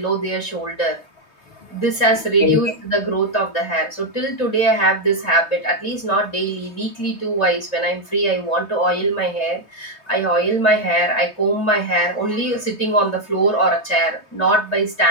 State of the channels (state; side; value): late; right; 3.2 ms